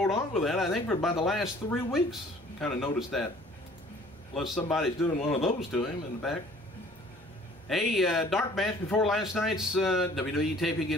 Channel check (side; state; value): both; normal; correlation 0.53